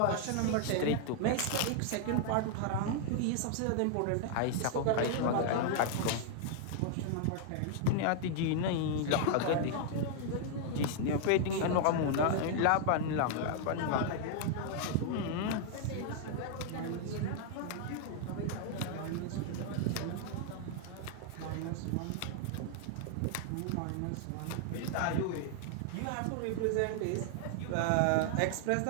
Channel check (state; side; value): different; both; correlation 0.00